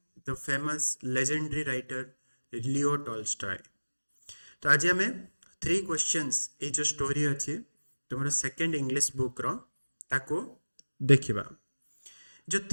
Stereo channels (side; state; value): both; inverted; correlation -1.00